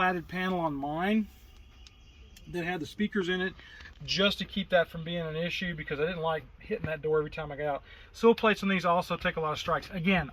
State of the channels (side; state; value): both; identical; correlation 1.00